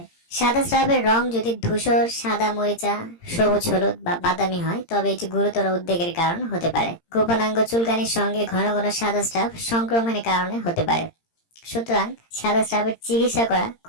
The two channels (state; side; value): late; right; 17 ms